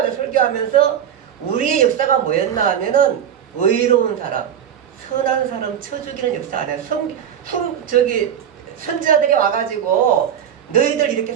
우리의 역사가 뭐였나 하면은 의로운 사람, 선한 사람 쳐 죽이는 역사 아니야. 선지자들이 와가지고 너희들 이렇게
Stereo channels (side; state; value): left; quieter; 9.1 dB